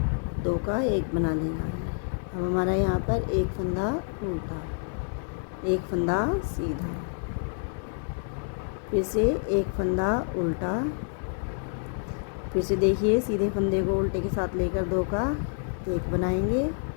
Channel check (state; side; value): silent; right; digital silence